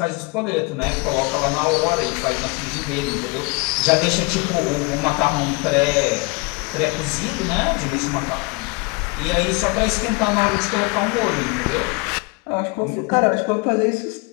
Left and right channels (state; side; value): quieter; right; 28.7 dB